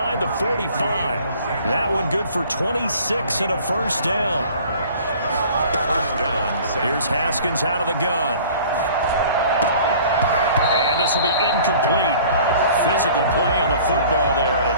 the 45. That one good for 26 and a first down. Here's Haskins out of the gun. And this will be incomplete. Physical play on the football there, and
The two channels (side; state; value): both; inverted; correlation -0.49